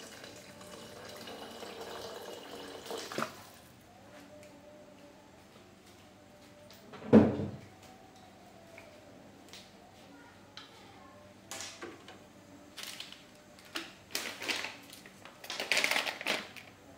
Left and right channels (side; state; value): both; identical; correlation 1.00